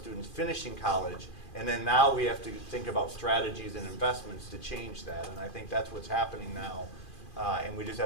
finishing college, And then now we have to think about strategies and investments to change that. And I think that's what's happening now. And we just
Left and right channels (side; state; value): right; late; 2.4 ms